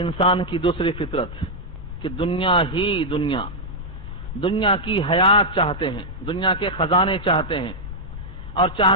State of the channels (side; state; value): left; noise; rumble, 12 dB below the sound